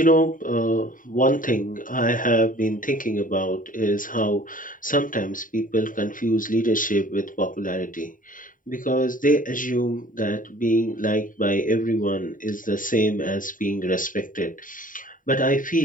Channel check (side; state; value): right; late; 0.39 ms